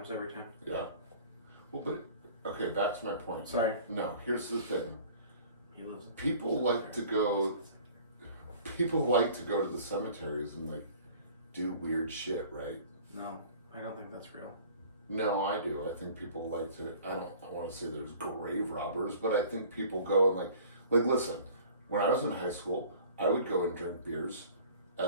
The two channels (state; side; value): inverted; both; correlation -0.48